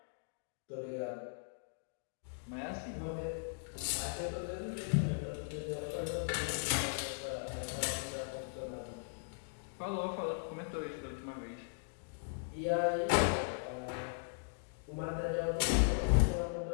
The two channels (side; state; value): right; silent; digital silence